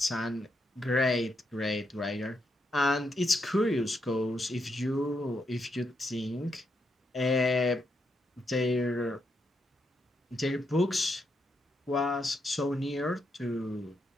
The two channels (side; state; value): both; normal; correlation 0.81